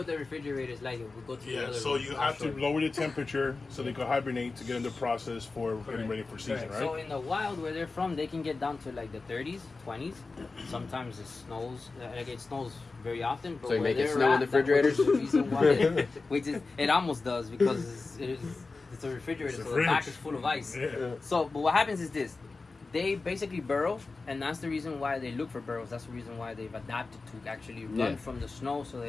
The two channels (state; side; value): quieter; right; 3.8 dB